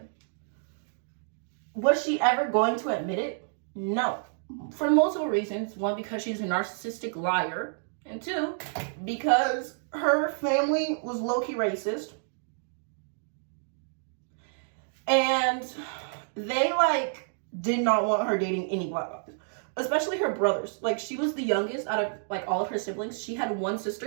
Was she ever going to admit it? No. For multiple reasons. One, because she's a narcissistic liar. And two, because her family was low-key racist. And they, like, did not want her dating any black guys. Especially her brothers. Like, she was the youngest out of, like, all of her siblings. She had one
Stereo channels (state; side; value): silent; left; digital silence